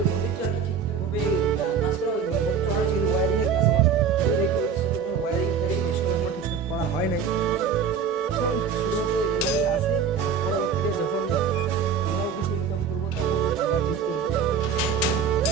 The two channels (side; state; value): left; quieter; 6.5 dB